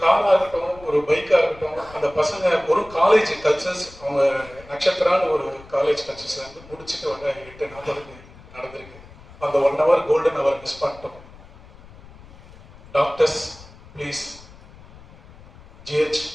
காராக இருக்கட்டும், ஒரு பைக்காக இருக்கட்டும், அந்த பசங்க ஒரு காலேஜ் கல்ச்சர்ஸ், அவங்க நட்சத்திரான்னு ஒரு காலேஜ் கல்ச்சர்ஸ் வந்து முடிச்சுட்டு வர 8:40 நடந்திருக்கு. அந்த 1 hour கோல்டன் ஹவர் மிஸ் பண்ணிட்டோம். டாக்டர்ஸ் ப்ளீஸ், ஜிஹெச்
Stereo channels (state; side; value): noise; left; rumble, 21 dB below the sound